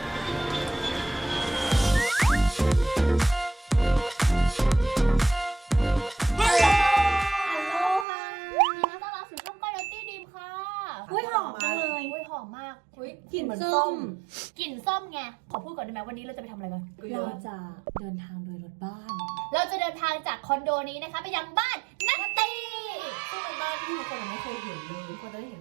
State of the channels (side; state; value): left; drops out; at 8.1 s